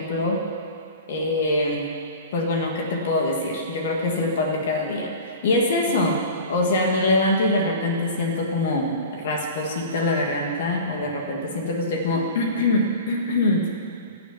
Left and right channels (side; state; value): both; inverted; correlation -0.36